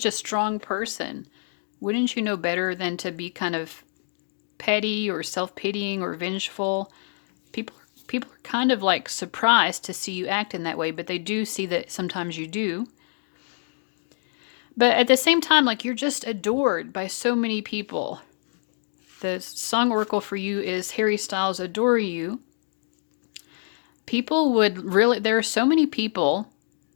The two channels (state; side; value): silent; right; digital silence